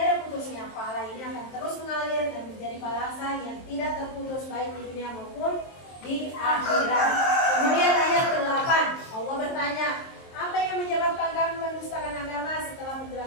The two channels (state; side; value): late; right; 23 ms